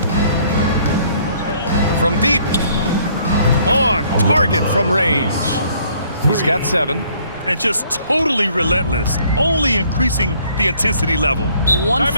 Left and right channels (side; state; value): both; inverted; correlation -0.62